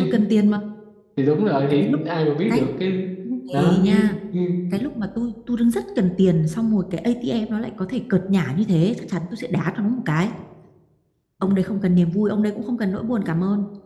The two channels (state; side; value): identical; both; correlation 1.00